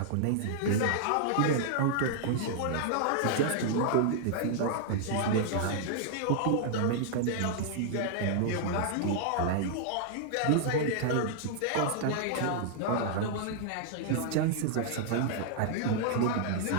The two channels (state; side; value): different; both; correlation -0.01